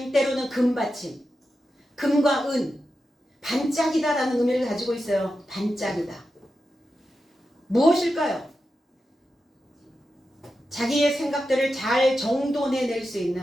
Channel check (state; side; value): normal; both; correlation 0.90